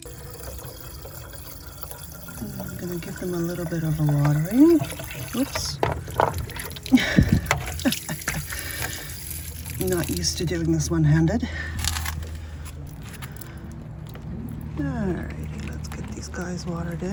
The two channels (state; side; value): identical; both; correlation 1.00